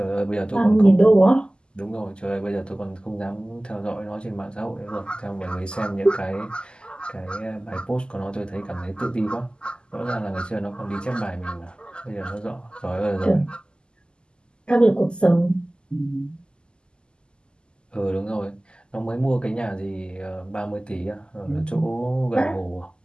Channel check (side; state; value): right; late; 0.048 ms